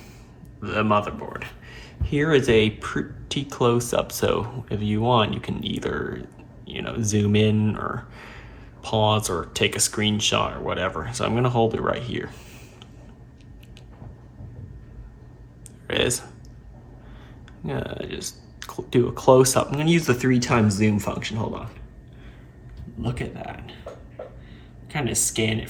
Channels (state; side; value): identical; both; correlation 1.00